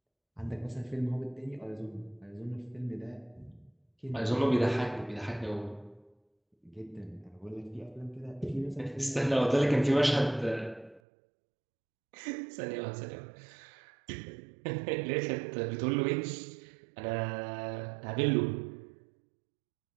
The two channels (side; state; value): left; drops out; at 11.0 s